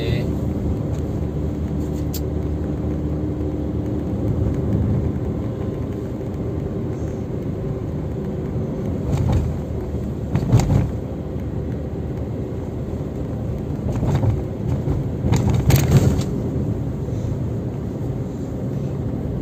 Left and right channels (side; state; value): both; identical; correlation 1.00